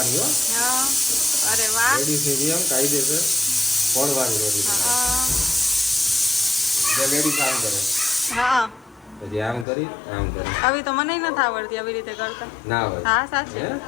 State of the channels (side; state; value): right; drops out; at 9.7 s